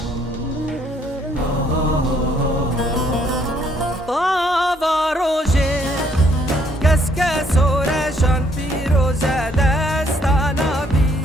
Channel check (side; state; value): both; normal; correlation 0.67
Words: طاوا روژه کس که سورشان پیروزه دستانا بی